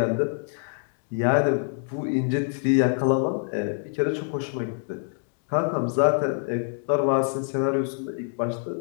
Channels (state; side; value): silent; right; 61 dB below the other